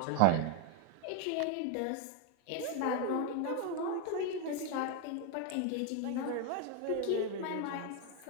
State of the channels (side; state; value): both; different; correlation 0.01